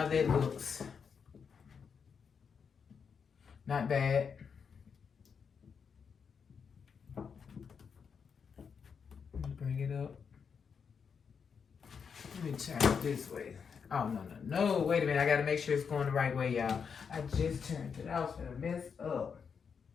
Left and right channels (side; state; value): right; quieter; 6.4 dB